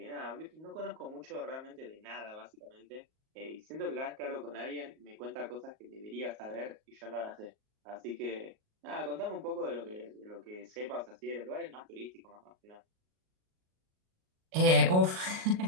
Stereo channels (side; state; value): left; late; 38 ms